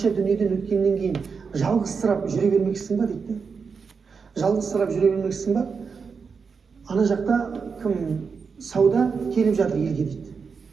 дүниеден өткеннен кейін жалғызсырап жүре бермексің ба дейді. Жалғызсырап жүре бермексің ба? Ана жақта кім Сауда келіп жатыр елге дейді.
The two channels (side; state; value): left; quieter; 5.5 dB